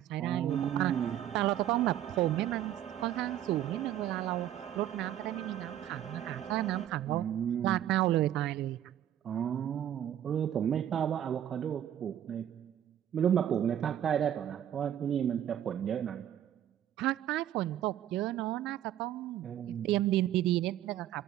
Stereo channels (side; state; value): left; quieter; 11.2 dB